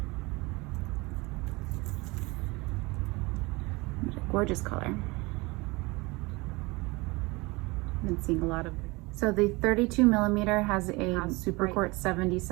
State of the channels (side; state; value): left; quieter; 24.3 dB